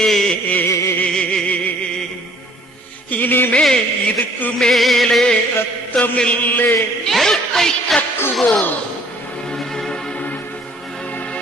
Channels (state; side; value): normal; both; correlation 0.58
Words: இனிமேல் இதுக்கு மேலே ரத்தமில்லே நெருப்பை கக்குவோம்.